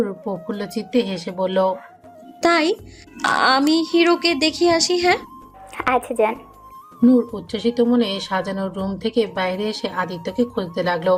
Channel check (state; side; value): identical; both; correlation 1.00